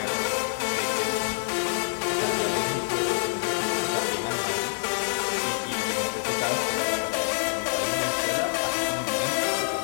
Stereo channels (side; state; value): right; silent; digital silence